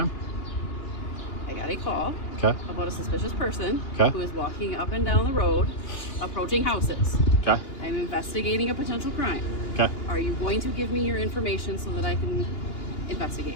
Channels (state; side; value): late; right; 2.9 ms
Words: I got a call Okay. about a suspicious person Okay. who is walking up and down the road, approaching houses. Okay. I'm investigating a potential crime. Okay. Are you going to give me your information so that I can investigate?